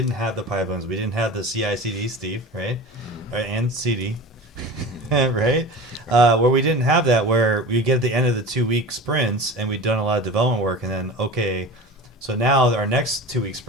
have the pipelines, we didn't have the CI/CD, Steve, right, and CD, right, where we didn't have that, where we get at the end of the 2-week sprints and we've done a lot of development work, and then so now our next 2-week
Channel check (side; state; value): both; normal; correlation 0.34